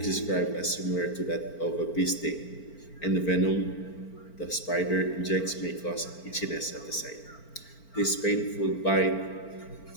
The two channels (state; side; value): late; right; 4.4 ms